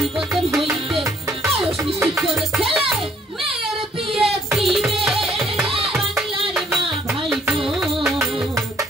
হইতে বয়স নিশ্চিত করে ছেলে মেয়ের বিয়ে দিবে বাংলার মা ভাই বোন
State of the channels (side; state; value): both; normal; correlation 0.64